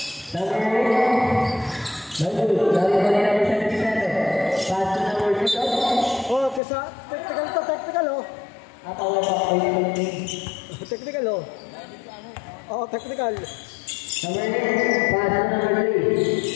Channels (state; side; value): drops out; right; at 6.6 s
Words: Oh, kesa technical oh. Technical oh. Oh, technical. Number 3.